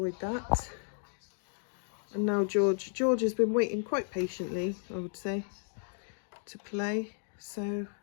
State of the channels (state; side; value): silent; right; digital silence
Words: that. And now George has been waiting quite patiently, I would say, to play. So